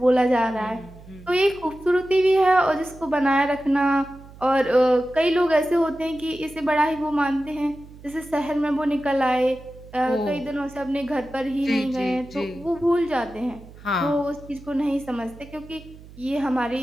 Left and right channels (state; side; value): noise; right; hum, 20 dB below the sound